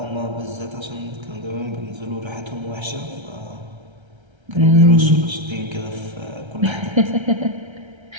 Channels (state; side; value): late; left; 1.3 ms